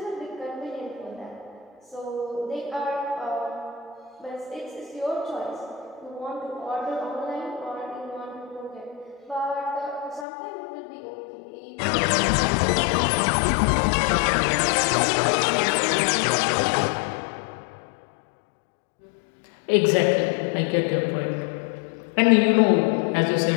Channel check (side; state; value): right; drops out; at 10.2 s